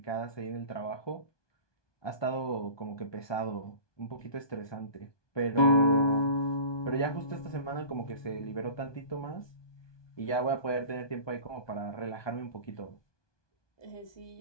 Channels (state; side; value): late; right; 1.2 ms